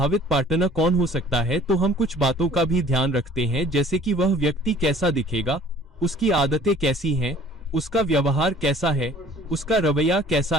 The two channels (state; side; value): normal; both; correlation 0.52